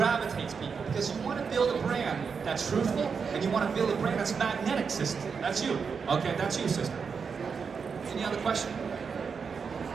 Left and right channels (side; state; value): left; quieter; 5.8 dB